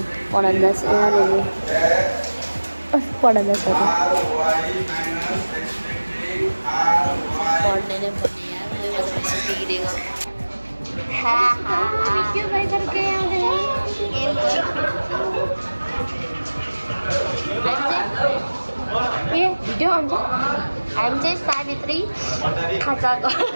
पढन्दास यहाँनिर पढन्दास पढ्ने नै पढ्ने भिडियो हुन्छ हामी चाहिँ सावित्री खाजा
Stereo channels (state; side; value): inverted; both; correlation -1.00